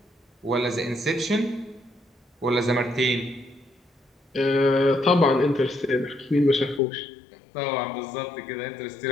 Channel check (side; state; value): right; drops out; at 6.8 s